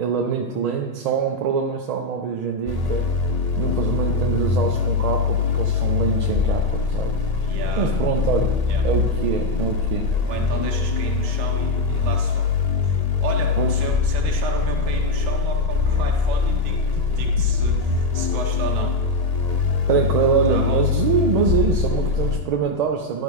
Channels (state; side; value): late; left; 1.8 ms